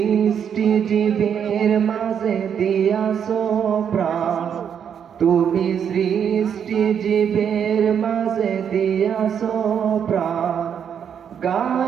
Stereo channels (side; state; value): left; quieter; 8.1 dB